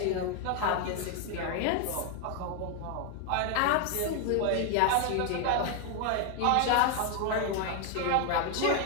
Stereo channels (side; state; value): both; different; correlation 0.00